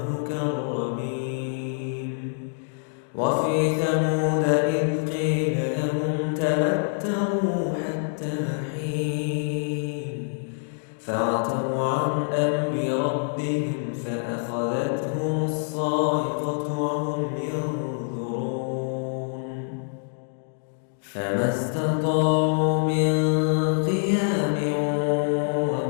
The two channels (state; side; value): silent; right; digital silence